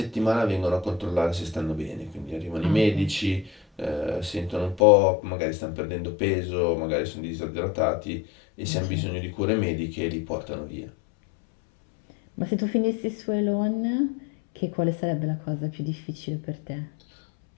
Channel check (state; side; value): drops out; right; at 4.8 s